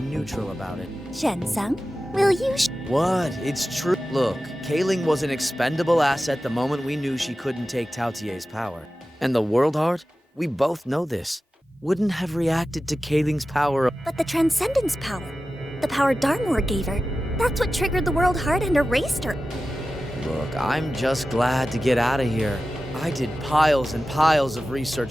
neutral about it. Shensung, will you What? It's true. Look, Kaling was an expendable asset the moment we knew she couldn't take Tautier's power. And the World Heart? We both know this. Wouldn't have reacted to Kaling's power. But the Transcendence power, the power Darmore gave her, that's what triggered the World Heart and erased her. Look, I'm just glad to get out of here. I did piles and piles of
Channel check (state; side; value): normal; both; correlation 0.94